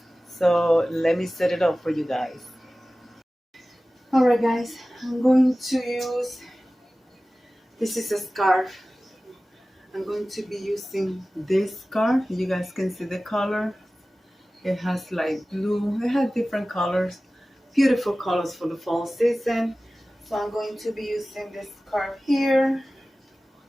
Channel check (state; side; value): normal; both; correlation 0.97